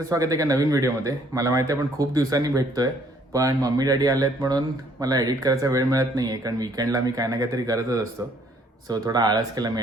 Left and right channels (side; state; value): both; normal; correlation 0.64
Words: स्वागत आहे एका नवीन व्हिडिओमध्ये. मला माहिती आहे आपण खूप दिवसांनी भेटतोय, पण मम्मी डॅडी आलेत म्हणून मला एडिट करायचा वेळ मिळत नाही आहे, कारण वीकेंडला मी काय ना काहीतरी करतच असतो. सो थोडा आळस केला मी